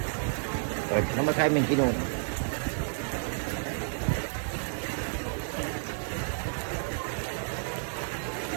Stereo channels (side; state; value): left; silent; digital silence